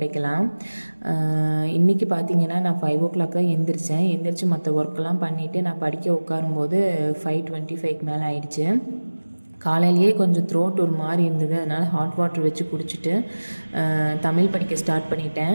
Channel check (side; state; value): both; inverted; correlation -1.00